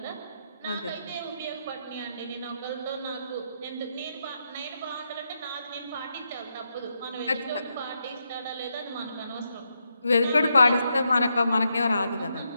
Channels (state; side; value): inverted; both; correlation -0.82